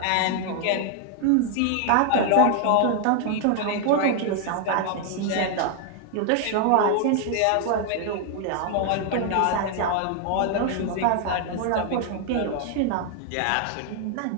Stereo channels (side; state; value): both; different; correlation 0.00